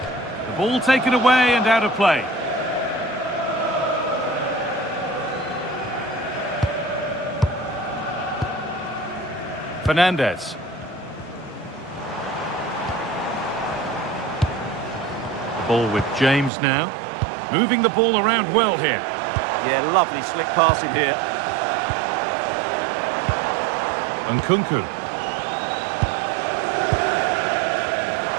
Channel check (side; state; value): left; drops out; at 16.5 s